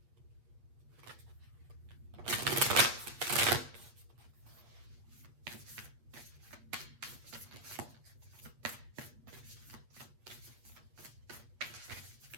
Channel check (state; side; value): late; left; 8.2 ms